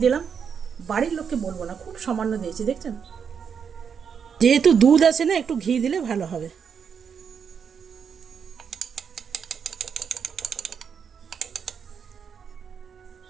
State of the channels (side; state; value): left; quieter; 6.9 dB